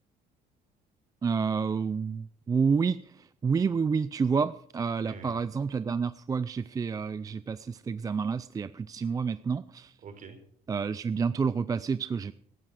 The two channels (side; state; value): left; quieter; 5.3 dB